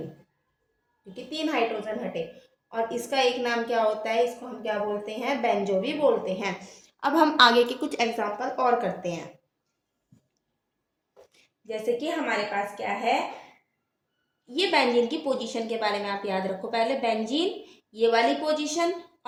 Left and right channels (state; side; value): identical; both; correlation 1.00